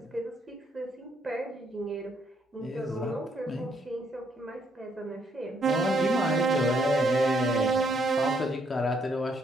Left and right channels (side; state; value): both; normal; correlation 0.71